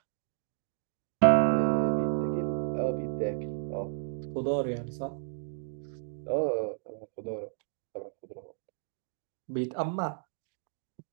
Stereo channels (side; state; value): left; silent; digital silence